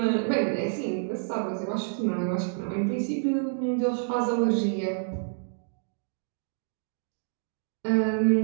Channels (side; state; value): left; silent; digital silence